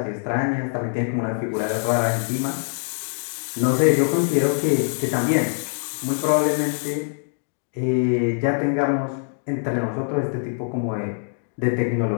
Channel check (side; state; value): right; silent; digital silence